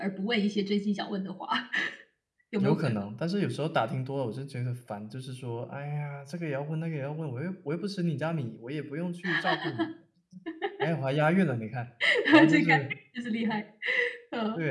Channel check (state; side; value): identical; both; correlation 1.00